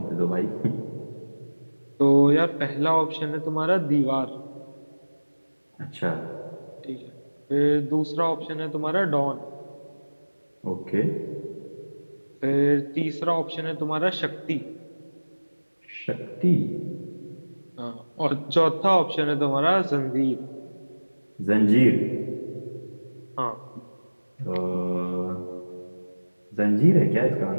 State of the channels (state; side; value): inverted; both; correlation -1.00